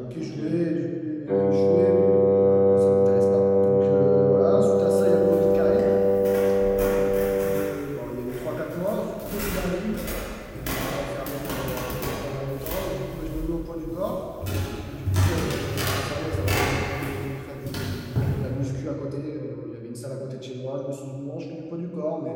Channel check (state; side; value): identical; both; correlation 1.00